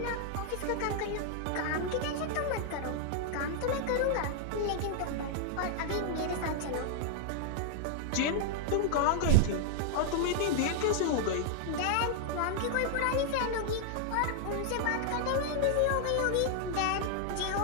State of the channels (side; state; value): both; different; correlation -0.01